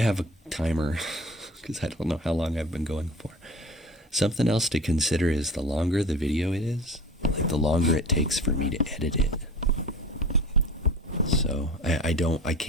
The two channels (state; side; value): normal; both; correlation 0.39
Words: a timer because I don't know how long I've been going for. Something else to consider is the longer the video it is, like the longer it takes for me to edit it. So I